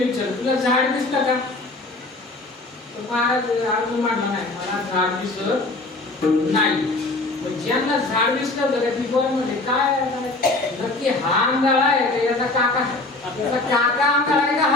विचारलं, तुला झाड दिसतं का? तर महाराज अर्जुन म्हणला, नाही मला झाड दिसत नाही. ज्यांना झाड दिसलं तर ती बरं म्हणजे काय नक्की हा आंधळा आहे का याचा काका? याचा काका आंधळा आहे का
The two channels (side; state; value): right; quieter; 3.0 dB